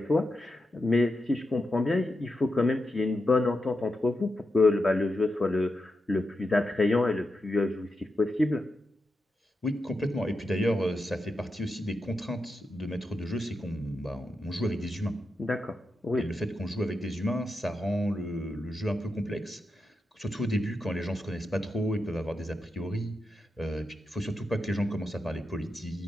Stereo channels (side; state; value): both; normal; correlation 0.87